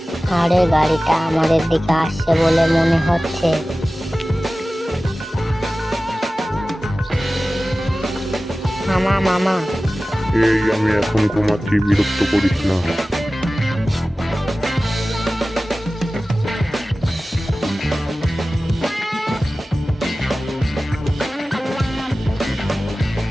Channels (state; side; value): normal; both; correlation 0.96